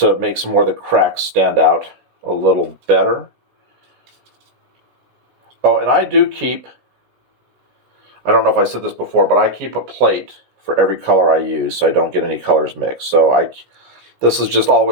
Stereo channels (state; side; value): late; left; 17 ms